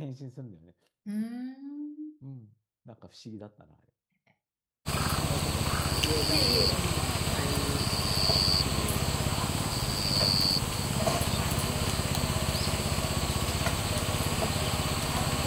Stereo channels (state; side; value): identical; both; correlation 1.00